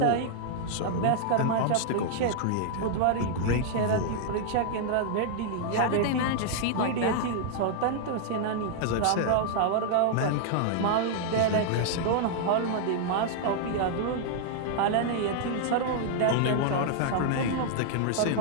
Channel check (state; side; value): different; both; correlation -0.01